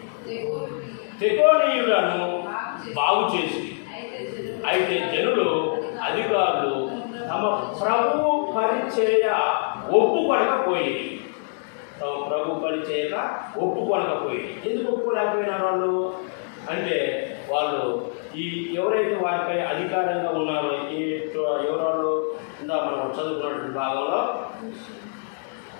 తెకోనీయులను బాగు చేసి అయితే జనులు అధికారులు తమ ప్రభు పరిచయ ఒప్పుకొనకపోయి ఎందుకు ఒప్పుకోలేకపోయినారు వాళ్ళు అంటే వాళ్ళు ఈ ఎవరైతే వారిపై అధికారంగా ఉన్నారో ఎవరు ఇందా మనం చదువుకున్నటువంటి భాగంలో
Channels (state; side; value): silent; right; digital silence